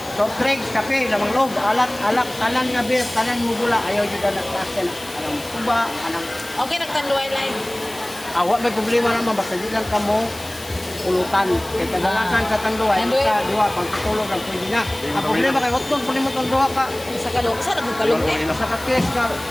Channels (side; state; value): left; noise; hiss, 16 dB below the sound